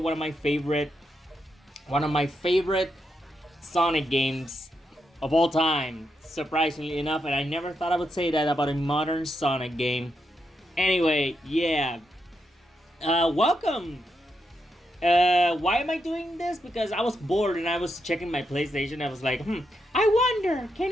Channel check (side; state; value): both; normal; correlation 0.83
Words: of my favorite Sonic games of all time, surprisingly enough, and I never thought I would say that about a modern Sonic game. Anyway, yeah. Welcome! Why am I doing this? Because I was bored and I was checking my PlayStation. I was like, I wonder,